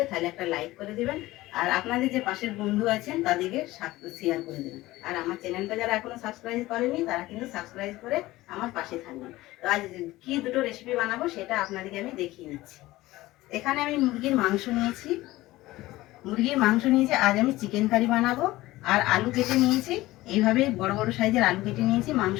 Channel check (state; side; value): quieter; right; 17.8 dB